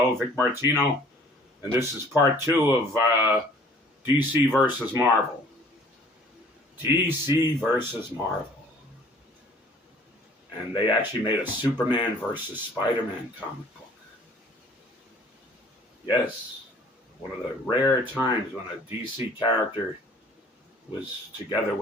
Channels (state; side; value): normal; both; correlation 0.53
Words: Vic Martino, and this is part 2 of DC versus Marvel. DC versus Marvel. And they actually made a Superman versus Spider-Man comic book. Yes, one of the rare times when a DC character was together